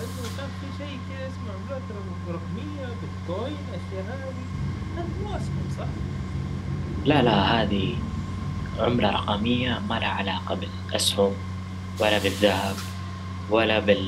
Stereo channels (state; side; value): identical; both; correlation 1.00